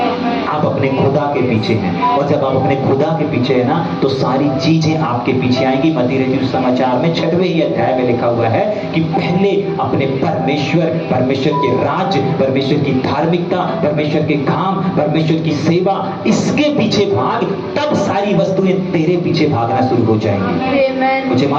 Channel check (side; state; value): both; identical; correlation 1.00